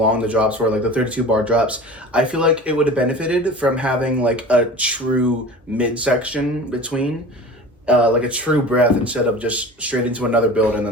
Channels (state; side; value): normal; both; correlation 0.37